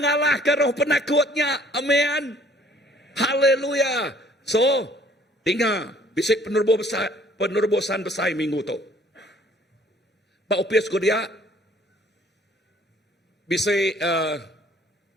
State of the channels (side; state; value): both; normal; correlation 0.57